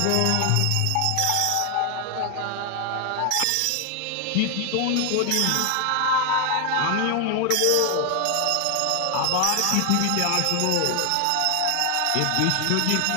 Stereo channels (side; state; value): both; different; correlation 0.00